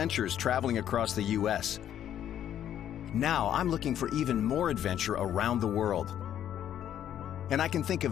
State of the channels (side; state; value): right; quieter; 10.5 dB